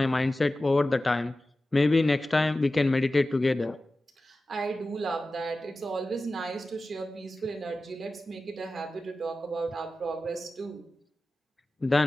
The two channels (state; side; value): normal; both; correlation 0.95